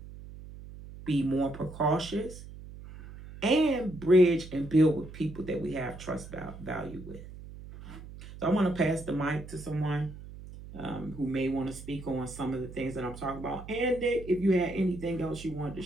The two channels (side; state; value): right; noise; hum, 14 dB below the sound